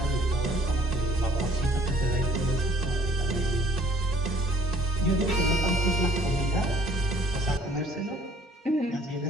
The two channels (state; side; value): normal; both; correlation 0.58